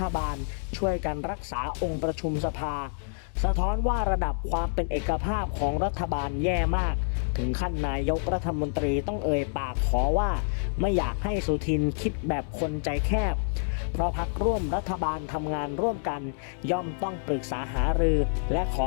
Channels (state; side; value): silent; right; digital silence